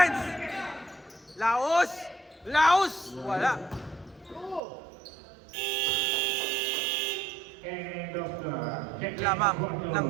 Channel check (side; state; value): left; drops out; at 4.6 s